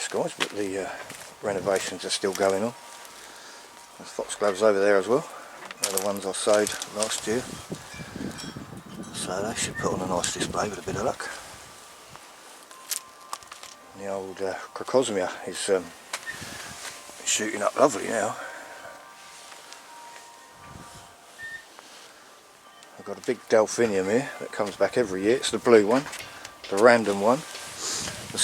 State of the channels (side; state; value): both; identical; correlation 1.00